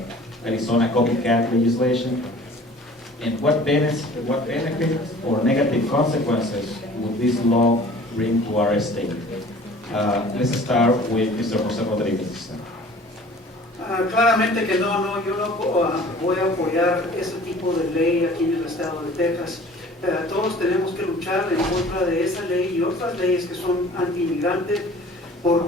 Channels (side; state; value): both; normal; correlation 0.48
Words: Arizona copycat legislation. And what benefits or negative consequences would this law bring to our state? Let's start with Mr. José Rodríguez. Claramente que no, yo no voy a apoyar ese tipo de ley aquí en el estado de Texas. Todos tenemos que luchar en contra de esa ley y otras leyes que son anti-inmigrantes,